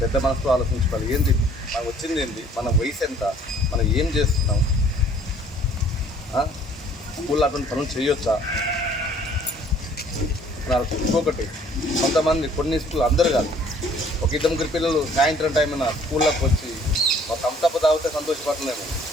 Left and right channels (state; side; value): normal; both; correlation 0.57